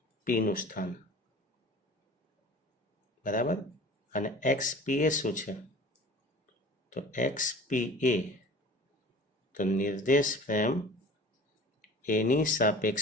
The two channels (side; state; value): both; normal; correlation 0.42